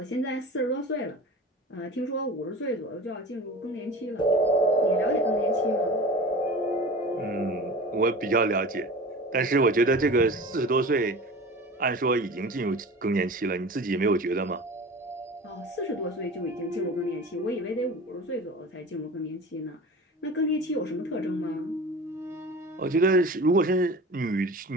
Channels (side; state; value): both; normal; correlation 0.35